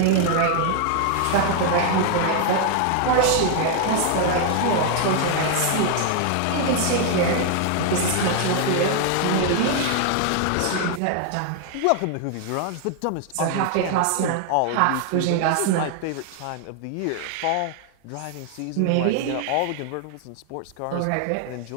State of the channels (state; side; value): different; both; correlation 0.00